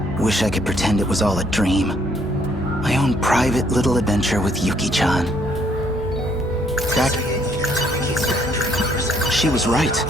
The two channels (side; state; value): both; normal; correlation 0.67